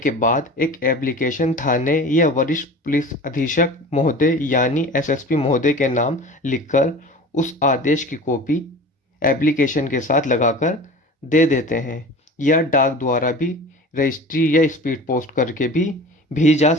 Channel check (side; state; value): both; normal; correlation 0.37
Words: बाद एक एप्लीकेशन थाने या वरिष्ठ पुलिस अधीक्षक महोदय यानी एसएसपी महोदय के नाम लिखकर उस आदेश की कॉपी एप्लीकेशन के साथ लगाकर दे देते हैं या डाक द्वारा भी रजिस्ट्री या स्पीड पोस्ट करके भी भेजी जा